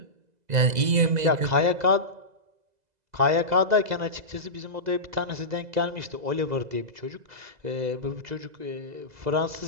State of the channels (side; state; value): left; late; 2.0 ms